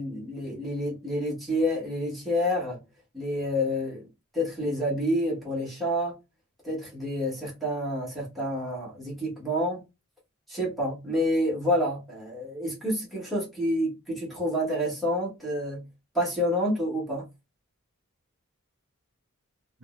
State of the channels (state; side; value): normal; both; correlation 0.38